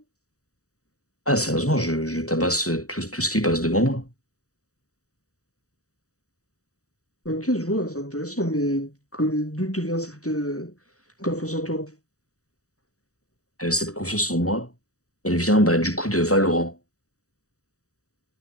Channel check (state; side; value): late; right; 0.66 ms